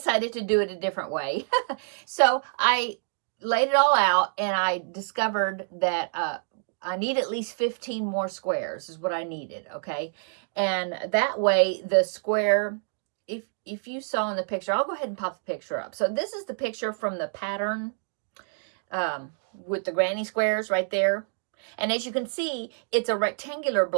to do it a different way. So I laid it all out, and I discovered that I need at least 15 more squares is what I needed, okay? And that way the square, if you saw in the picture, I'll go ahead and pop the picture up. So this is the picture from the pattern with the granny squares right there. And as you can see, it's a rectangular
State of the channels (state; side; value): silent; left; digital silence